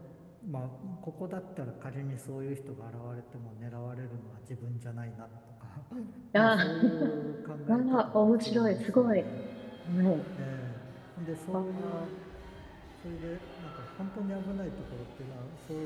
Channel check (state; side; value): identical; both; correlation 1.00